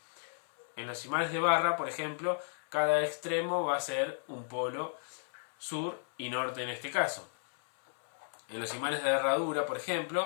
En los imanes de barra, por ejemplo, cada extremo va a ser un polo sur y norte en este caso. En los imanes de herradura, por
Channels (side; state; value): right; silent; 55 dB below the other